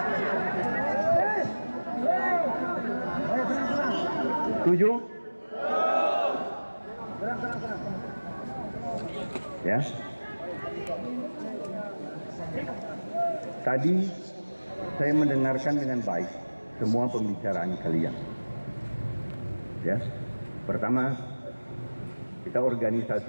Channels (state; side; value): inverted; both; correlation -1.00